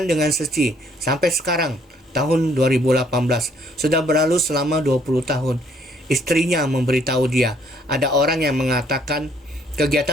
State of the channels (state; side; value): normal; both; correlation 0.64